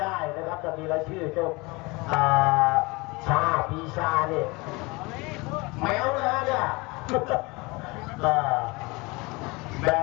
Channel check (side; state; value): right; quieter; 25.1 dB